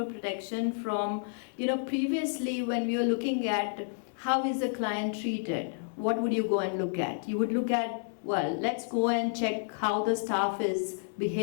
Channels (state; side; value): silent; right; 58 dB below the other